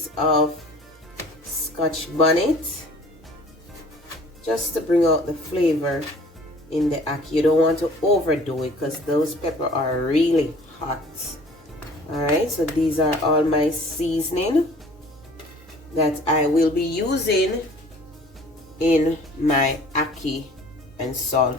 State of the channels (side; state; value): both; normal; correlation 0.50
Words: of scotch bonnet just to bring out the flavor in the ackee. You don't want to overdo it because those peppers are really hot. Alright, so these are all my seasoning that I will be using in my ackee and